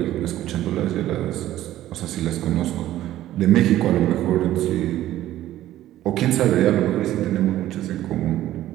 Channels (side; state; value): left; quieter; 13.8 dB